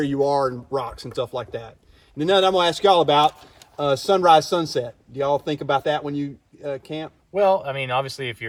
you are and rocks and stuff like that. And then I'm going to ask y'all about sunrise, sunset. Do y'all think about that when you camp? Well, I mean, obviously, if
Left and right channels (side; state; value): both; identical; correlation 1.00